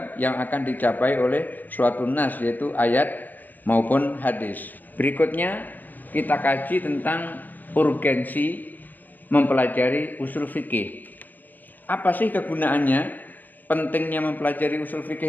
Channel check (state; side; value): late; right; 0.088 ms